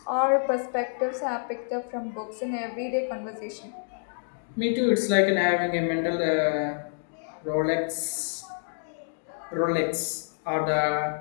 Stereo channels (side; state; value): right; silent; digital silence